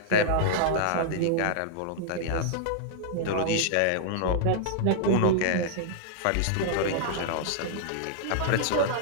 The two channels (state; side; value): different; both; correlation -0.01